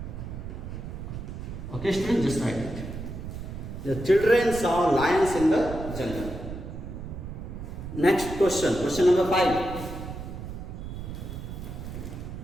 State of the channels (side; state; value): right; noise; rumble, 8 dB below the sound